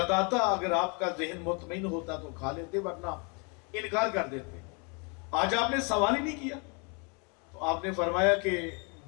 اگر آپ کا ذہن مطمئن ہوتا تو کھا لیتے ورنہ انکار کر دیتے۔ آج آپ نے سوال ہی نہیں کیا، تو آپ نے فرمایا کہ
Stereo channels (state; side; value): quieter; right; 33.7 dB